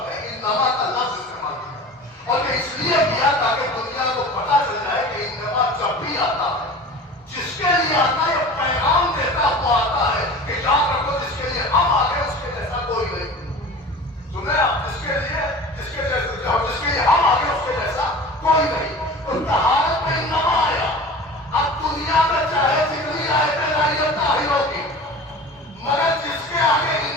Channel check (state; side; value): normal; both; correlation 0.38